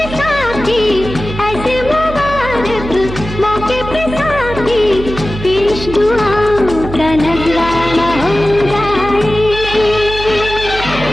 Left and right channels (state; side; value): noise; right; hum, 9 dB below the sound